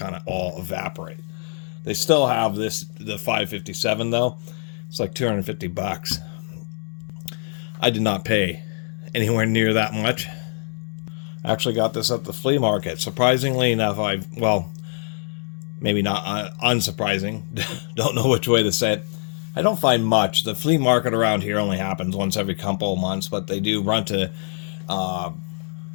of all evaporate. They still have the 557 though. It's like 250 bucks. I did not pay anywhere near that much. I actually got this at the flea market. Surprisingly enough, maybe not unsurprising, don't know which way to say it. I don't find much. The flea market around here only happens once every couple of months, but they do run to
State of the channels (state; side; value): silent; right; 56 dB below the other